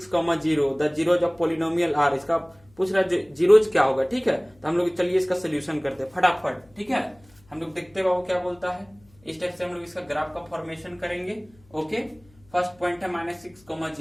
0। The zeros of polynomial are. इसका पूछ रहा है जीरोज क्या होगा। ठीक है, तो हम लोग चलिए इसका सोल्यूशन करते हैं फटाफट। ठीक है, हम लोग देखते हैं बाबू क्या बोलता है। इस टाइप से हम लोग इसका ग्राफ का फॉर्मेशन करेंगे। ओके, फर्स्ट पॉइंट है -6,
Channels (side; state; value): left; noise; hum, 29 dB below the sound